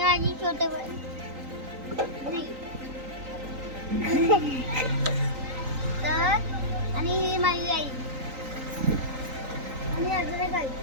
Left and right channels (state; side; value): late; left; 3.9 ms